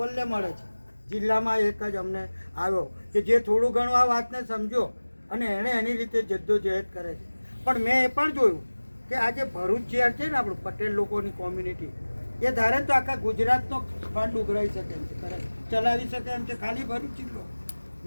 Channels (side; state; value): both; inverted; correlation -1.00